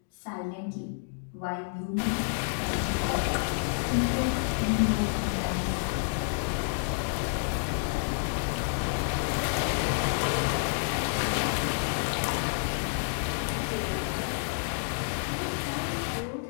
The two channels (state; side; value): silent; right; digital silence